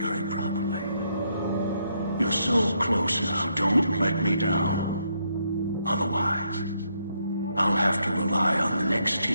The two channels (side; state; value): both; inverted; correlation -0.76